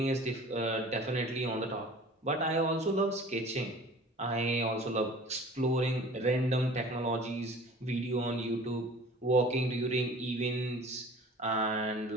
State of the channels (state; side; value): normal; both; correlation 0.44